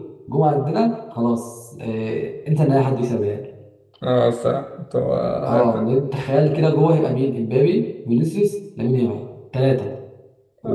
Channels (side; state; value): both; identical; correlation 1.00